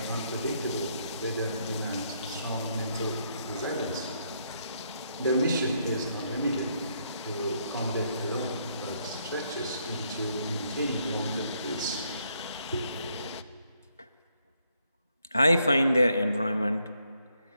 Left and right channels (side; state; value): both; inverted; correlation -0.74